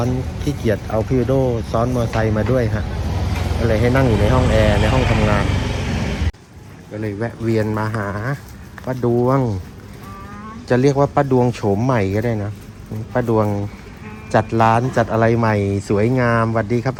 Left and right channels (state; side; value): identical; both; correlation 1.00